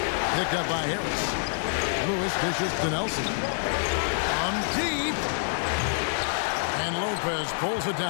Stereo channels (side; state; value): right; silent; 60 dB below the other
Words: Picked up by Harris. Lewis dishes to Nelson. Deep. And Lopez pulls it